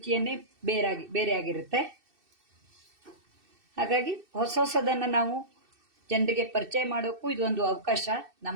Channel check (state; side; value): late; left; 2.6 ms